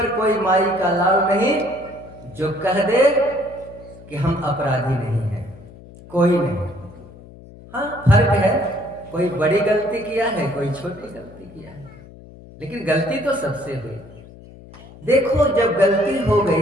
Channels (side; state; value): left; noise; hum, 20 dB below the sound